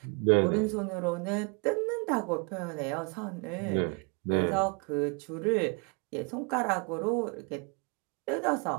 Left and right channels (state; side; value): quieter; left; 33.0 dB